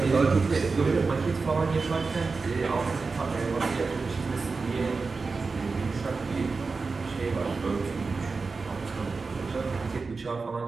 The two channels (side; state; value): left; quieter; 4.3 dB